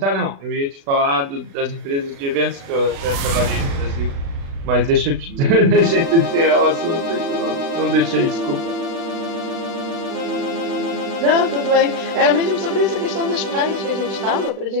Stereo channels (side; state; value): left; late; 36 ms